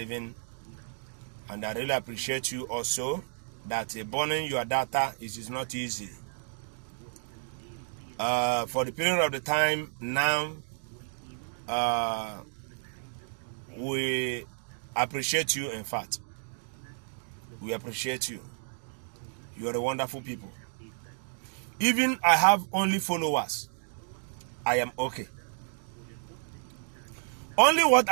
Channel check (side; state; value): left; silent; digital silence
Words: and I really appreciate you also that burning your data is not easy. For the period of the time now, we appreciate you. In fact, we appreciate you. You are a wonderful people. Even I have only followers, I am okay. Only what